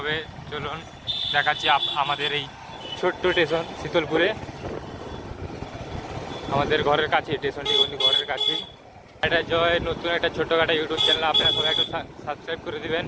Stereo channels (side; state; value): both; identical; correlation 1.00